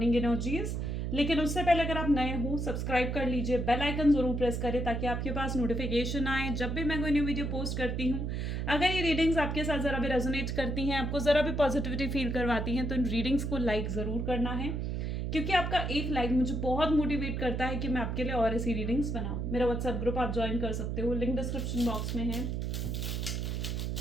energies. लेकिन उससे पहले अगर आप नए हो, सब्सक्राइब कर लीजिए, बेल आइकन जरूर प्रेस करें ताकि आपके पास नोटिफिकेशन आए जब भी मैं कोई न्यू वीडियो पोस्ट करती हूँ। अगर ये रीडिंग्स आपके साथ ज़रा भी रेजोनेट करती हैं, आपको ज़रा भी पॉजिटिविटी फील करवाती हैं, तो इन रीडिंग्स को लाइक ज़रूर करना है, क्योंकि आपका एक लाइक मुझे बहुत मोटिवेट करता है कि मैं आपके लिए और ऐसी रीडिंग्स बनाऊं। मेरा व्हाट्सएप ग्रुप आप ज्वाइन कर सकते हो, लिंक डिस्क्रिप्शन बॉक्स में है।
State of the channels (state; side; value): noise; right; hum, 2 dB below the sound